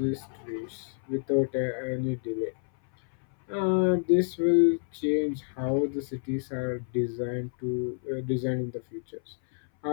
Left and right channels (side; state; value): right; silent; 59 dB below the other